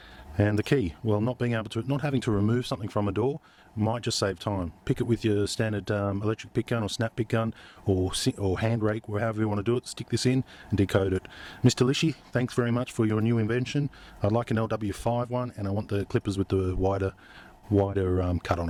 And the key, well, not having to remove something from a door might just save time. Pick it with your standard electric pick gun or snap pick gun, or hand rake, or however you want to do it. Stick this in and decode it. Mr. Lishi, thanks very much for your new invention. I'd like an LW5 one, and I want the clippers with the wider cut on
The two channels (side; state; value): both; identical; correlation 1.00